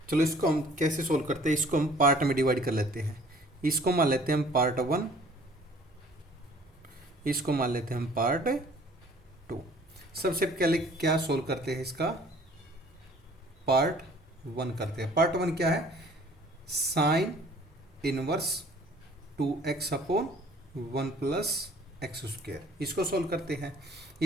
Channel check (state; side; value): normal; both; correlation 0.54